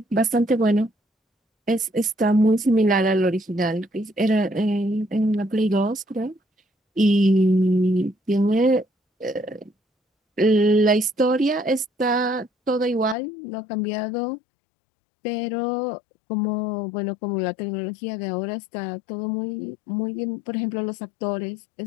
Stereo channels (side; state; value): right; drops out; at 13.2 s